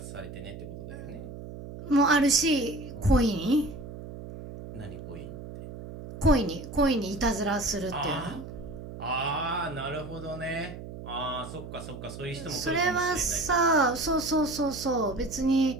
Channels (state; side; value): noise; right; hum, 11 dB below the sound